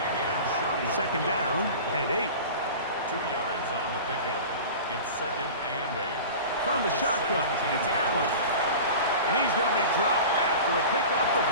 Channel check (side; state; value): both; inverted; correlation -0.35